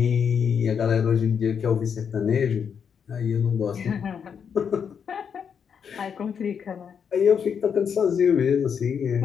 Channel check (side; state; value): right; quieter; 7.1 dB